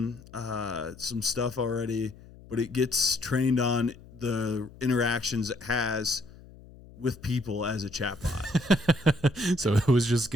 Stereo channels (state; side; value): noise; left; hum, 21 dB below the sound